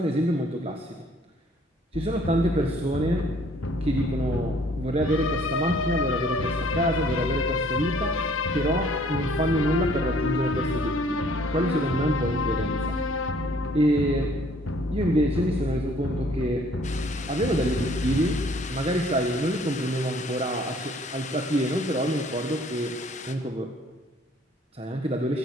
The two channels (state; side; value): normal; both; correlation 0.59